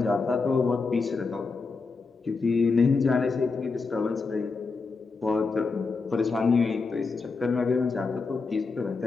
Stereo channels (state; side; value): quieter; right; 4.4 dB